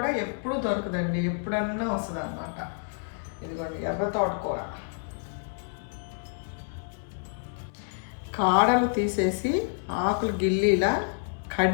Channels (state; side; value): silent; right; 59 dB below the other